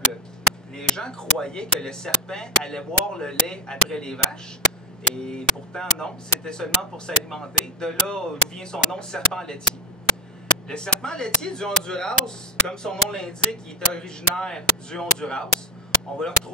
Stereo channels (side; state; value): both; normal; correlation 0.11